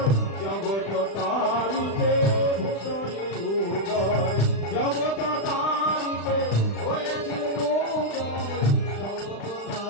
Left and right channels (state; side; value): late; right; 36 ms